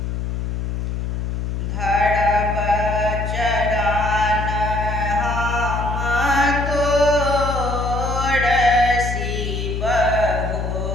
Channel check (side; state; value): left; noise; hum, 2 dB below the sound